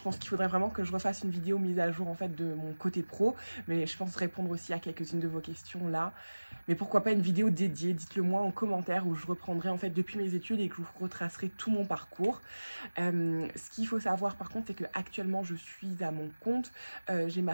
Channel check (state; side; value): inverted; both; correlation -1.00